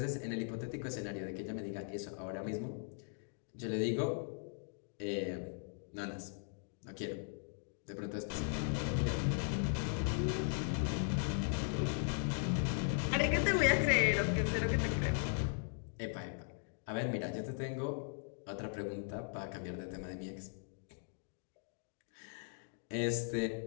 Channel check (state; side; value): silent; right; 52 dB below the other